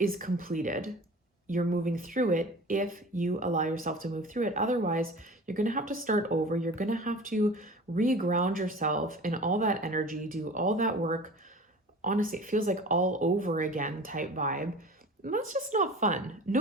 completed. You're moving through it if you allow yourself to move through it. Otherwise, you're going to have to start over. You're going to have to reground yourself in all that energy, do all that work. Honestly, it feels like all over again type vibe. And that's just not fun.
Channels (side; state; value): both; normal; correlation 0.39